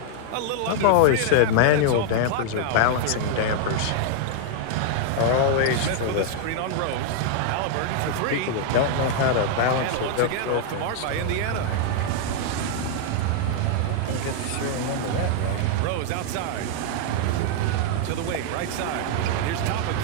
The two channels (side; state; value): both; different; correlation 0.00